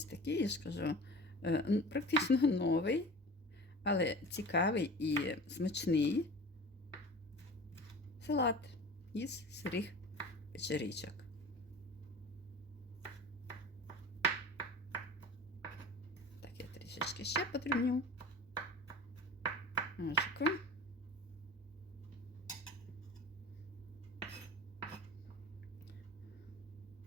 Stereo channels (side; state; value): both; normal; correlation 0.38